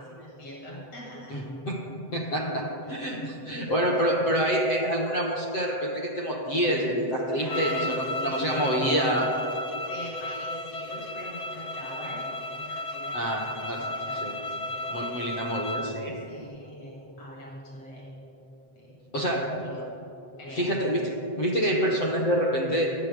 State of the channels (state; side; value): late; right; 7.8 ms